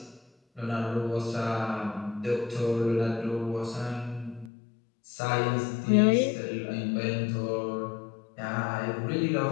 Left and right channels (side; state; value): right; drops out; at 4.5 s